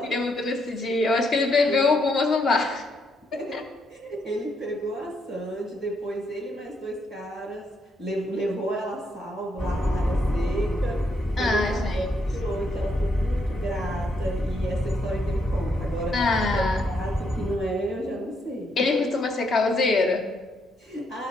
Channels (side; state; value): both; normal; correlation 0.76